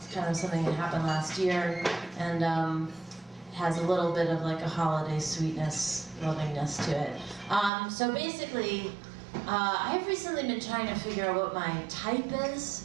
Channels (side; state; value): left; drops out; at 7.7 s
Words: kind of something that happened last year, and has a little bit of like a holiday sweetness, lovingness to it. So basically, I've recently been trying to figure out what my type